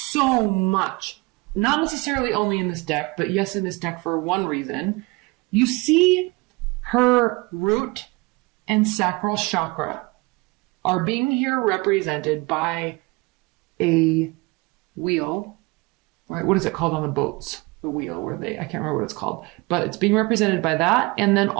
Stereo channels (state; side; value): quieter; left; 25.2 dB